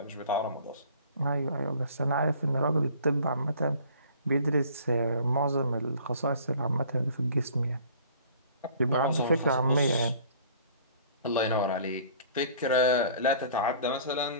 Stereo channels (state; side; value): inverted; both; correlation -0.51